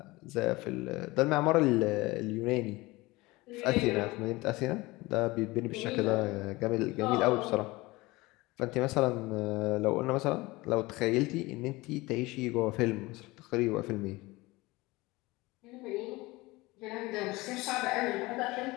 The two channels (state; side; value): quieter; right; 21.5 dB